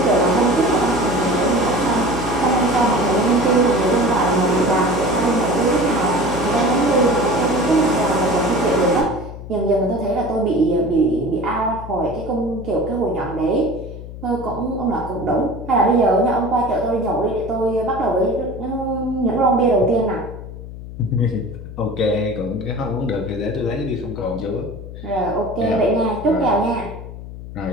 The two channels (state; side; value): noise; left; hum, 12 dB below the sound